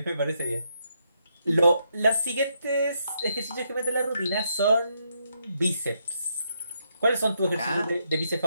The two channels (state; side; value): inverted; both; correlation -0.77